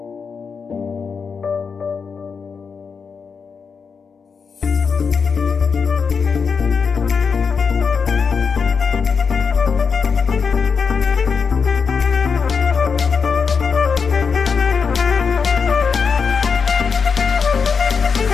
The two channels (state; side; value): quieter; right; 5.7 dB